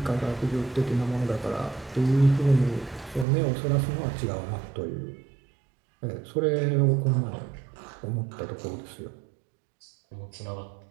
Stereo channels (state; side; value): drops out; left; at 3.2 s